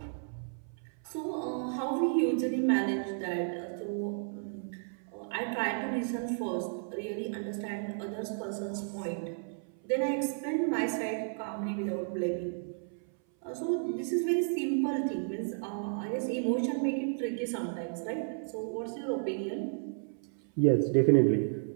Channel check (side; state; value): left; silent; 56 dB below the other